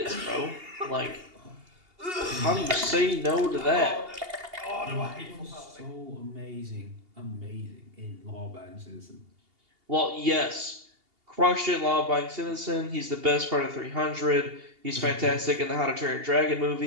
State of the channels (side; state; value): left; late; 2.8 ms